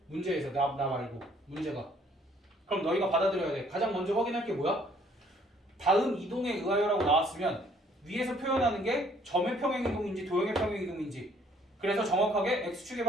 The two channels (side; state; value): both; normal; correlation 0.62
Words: 문제에서 나 말고 문제가. 그럼 너희가 받아들여야 돼. 가장 먼저 확인할 게 뭐야? 다음 이동에 의하여라고 나왔으면 위에서 표현하는 게 점의 평행이동인지 도형의 평행이동인지, 그래서 정확하게 x축의